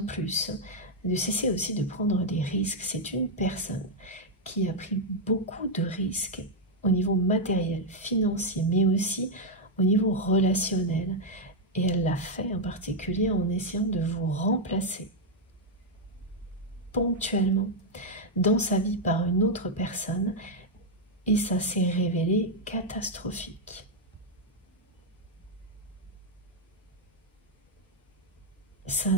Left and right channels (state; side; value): normal; both; correlation -0.01